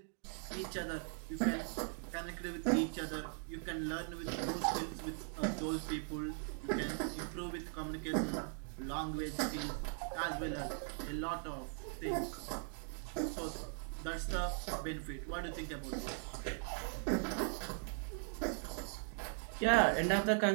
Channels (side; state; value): left; silent; 51 dB below the other